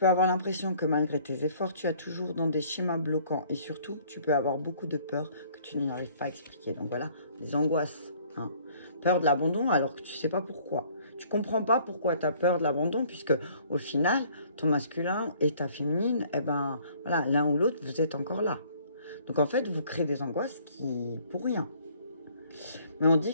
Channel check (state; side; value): inverted; both; correlation -0.58